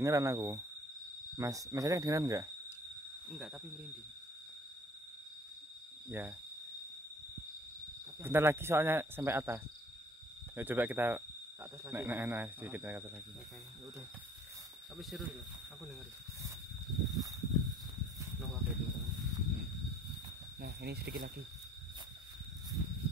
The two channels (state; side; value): normal; both; correlation 0.54